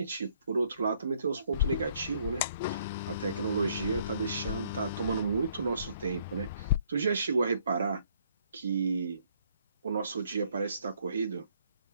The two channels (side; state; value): both; inverted; correlation -0.65